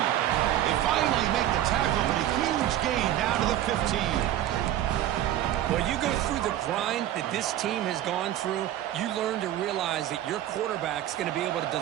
They finally make the tackle, but a huge gain down to the 15. Well, you go through the grind that this team has gone through, you learn to realize that your quarterback's going to be able to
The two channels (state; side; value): quieter; left; 12.4 dB